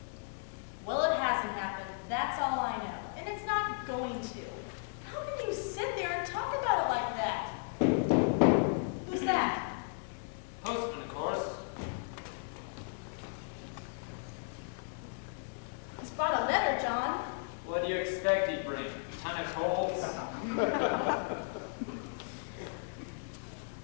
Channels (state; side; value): silent; right; digital silence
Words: Well, it hasn't happened. That's all I know. And it's not going to. How can you sit there and talk about it like that? Who's that? Postman, of course. He's brought a letter, John. What do you expect he'd bring? A ton of coals?